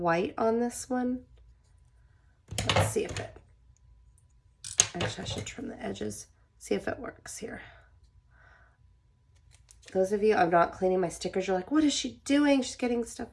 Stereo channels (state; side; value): identical; both; correlation 1.00